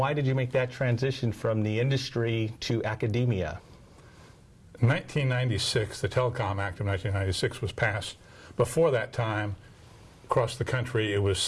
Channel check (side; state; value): both; identical; correlation 1.00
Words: did you make that transition from the industry to academia? In 1996, the Telecom Act of 1996 was passed. Before that time, across the country, it was